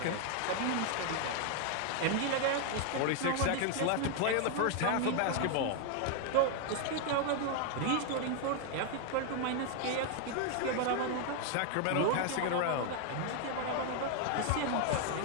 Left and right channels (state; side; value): different; both; correlation 0.00